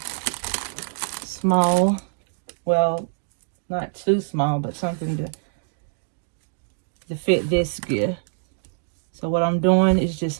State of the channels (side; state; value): left; silent; digital silence